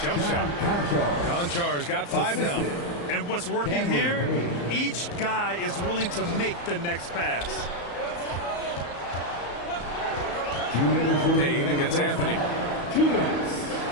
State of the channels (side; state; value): right; late; 34 ms